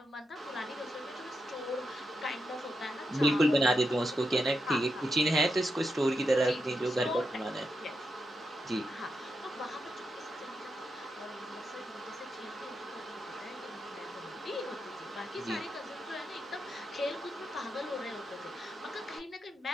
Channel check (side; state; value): both; normal; correlation 0.85